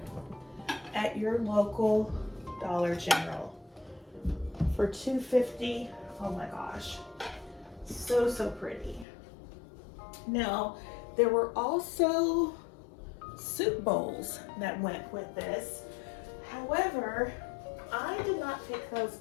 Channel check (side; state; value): right; drops out; at 9.1 s